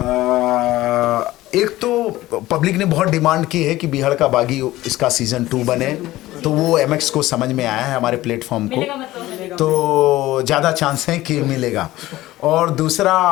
एक तो पब्लिक ने बहुत डिमांड की है कि बीहड़ का बागी इसका सीज़न 2 बने, तो वो MX को समझ में आया है, हमारे प्लेटफॉर्म को, तो ज़्यादा चांस है कि मिलेगा। और दूसरा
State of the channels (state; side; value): quieter; right; 16.7 dB